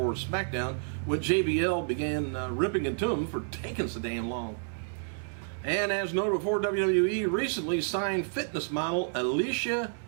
SmackDown when JBL began ripping into him for taking so damn long. And as noted before, WWE recently signed fitness model Alicia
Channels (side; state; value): left; silent; digital silence